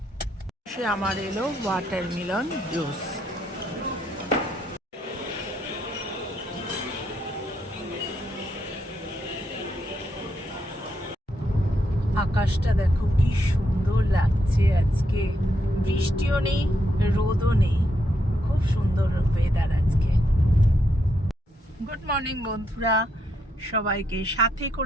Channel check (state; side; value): normal; both; correlation 0.79